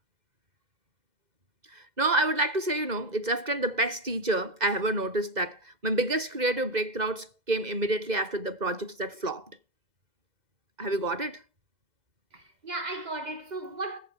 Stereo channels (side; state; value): left; late; 2.0 ms